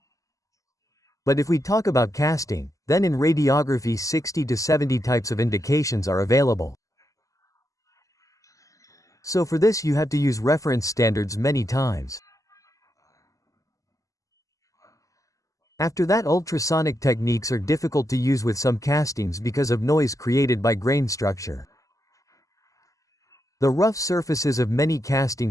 But if we talk about casting, then in radiography 60 to 70 types of indications are available. So for this you have to use reference standards many times. After that, ultrasonic techniques are difficult to use with some castings because of noise created by grain structure. The rough surfaces of many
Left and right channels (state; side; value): late; right; 0.16 ms